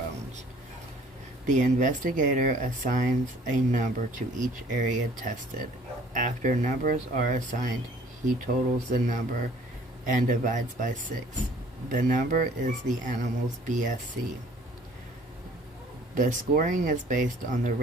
The investigator assigns a number to each area tested. After numbers are assigned, he totals the number and divides by 6. The number is the animal's BSC. The scoring is based on the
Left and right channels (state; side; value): normal; both; correlation 0.55